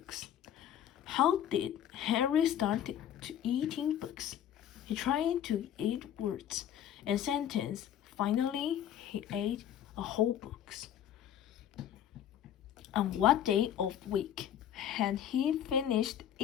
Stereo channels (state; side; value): quieter; right; 10.3 dB